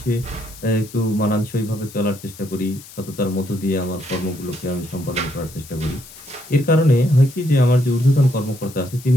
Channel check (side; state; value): left; noise; hiss, 18 dB below the sound